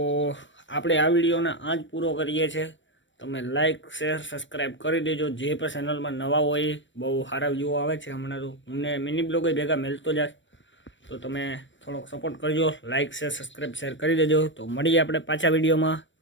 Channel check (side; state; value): right; late; 0.54 ms